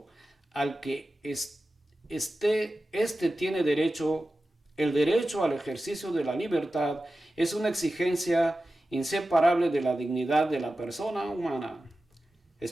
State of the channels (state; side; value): normal; both; correlation 0.94